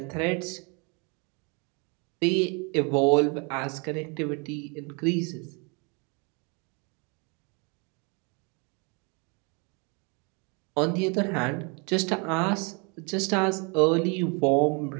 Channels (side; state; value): left; quieter; 32.6 dB